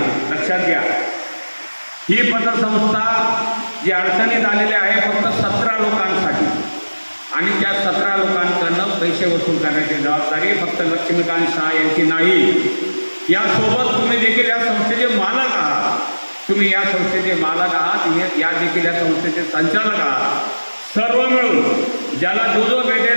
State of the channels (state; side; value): inverted; both; correlation -1.00